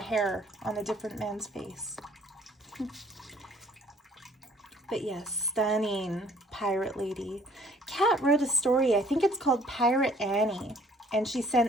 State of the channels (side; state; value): both; normal; correlation 0.58